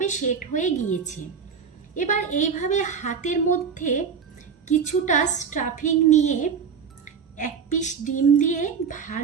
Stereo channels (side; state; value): left; quieter; 6.4 dB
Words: সেট হয়ে গিয়েছে। এবার এইভাবে হাতের মধ্যে কিছুটা স্টাফিং নিয়ে 1 পিস ডিম দিয়ে